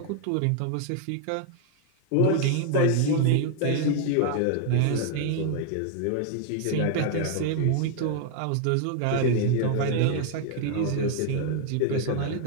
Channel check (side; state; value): both; different; correlation 0.00